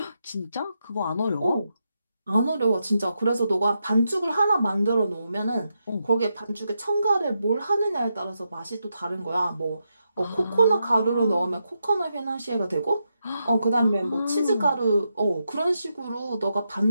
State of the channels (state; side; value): inverted; both; correlation -0.85